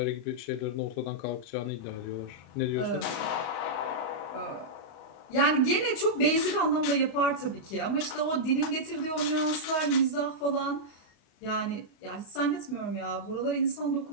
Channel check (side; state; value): right; late; 35 ms